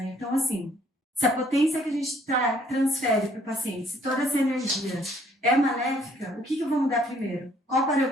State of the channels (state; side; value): normal; both; correlation 0.63